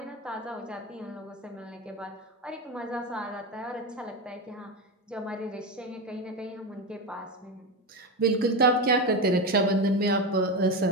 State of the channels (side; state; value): both; normal; correlation 0.17